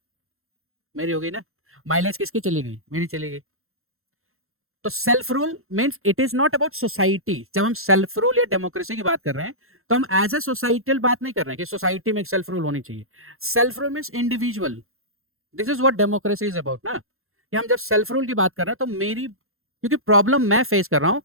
मेरी हो गई ना। माइलेज किसकी चली गई? मेरी चली गई। तो self rule means it is not about society. जब हम सेल्फ रूल या डेमोक्रेसी की बात कर रहे हैं तो हम एज ए सोसाइटल बात नहीं कर रहे हैं कि सोसाइटी में एक सेल्फ रूल होनी चाहिए। Self rule means individual. This is what democracy is about ना, कि हम जब सेल्फ रूल की बात कर रहे हैं तो मेरी, क्योंकि प्रॉब्लम मैं फेस कर रहा हूं,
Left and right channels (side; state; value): left; late; 0.62 ms